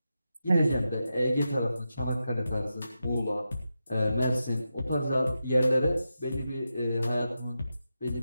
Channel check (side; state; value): both; inverted; correlation -0.89